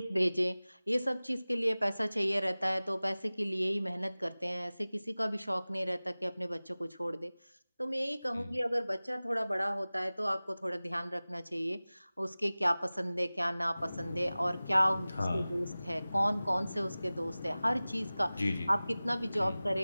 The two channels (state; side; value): inverted; both; correlation -0.98